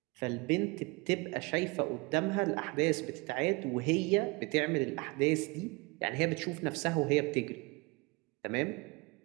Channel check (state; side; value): quieter; left; 26.7 dB